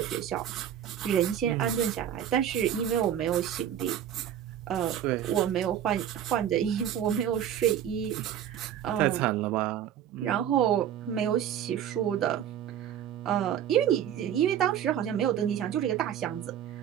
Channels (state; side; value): quieter; left; 10.0 dB